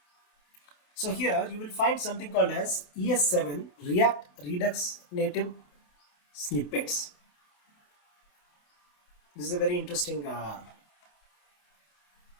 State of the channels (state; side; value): late; right; 28 ms